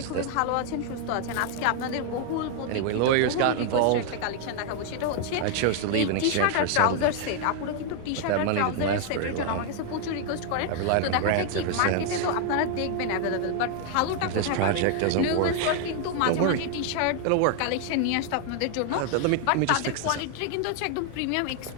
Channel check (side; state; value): both; different; correlation 0.00